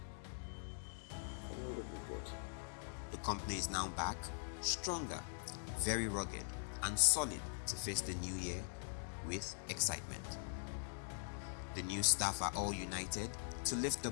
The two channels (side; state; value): right; silent; digital silence